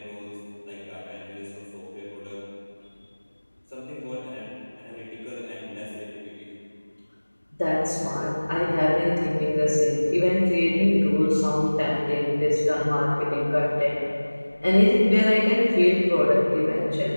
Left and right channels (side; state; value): both; inverted; correlation -1.00